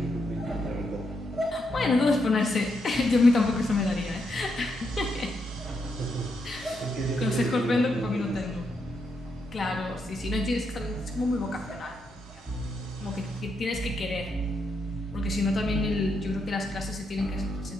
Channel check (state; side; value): normal; both; correlation 0.81